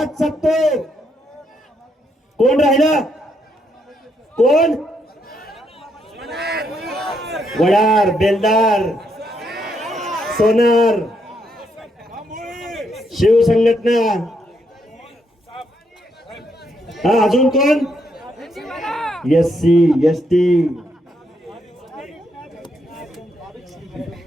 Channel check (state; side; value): normal; both; correlation 0.76